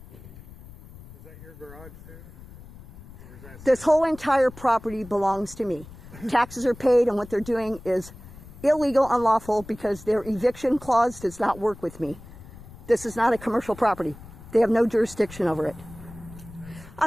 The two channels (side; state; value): left; noise; rumble, 18 dB below the sound